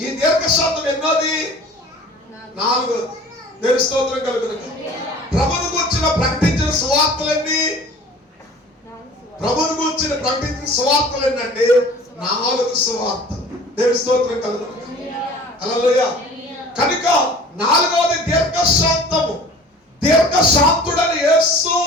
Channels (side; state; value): both; normal; correlation 0.45